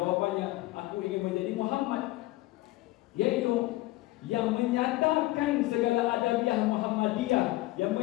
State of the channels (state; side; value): quieter; right; 18.6 dB